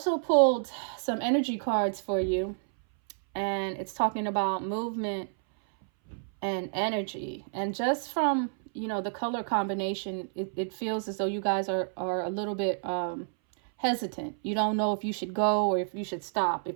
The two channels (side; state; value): left; silent; 58 dB below the other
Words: pulled some energy cards for you, and it's talking about movement and energy. And just from the color combination, it feels as though you guys are a little bit hesitant. You don't know if you should go or if you should stop,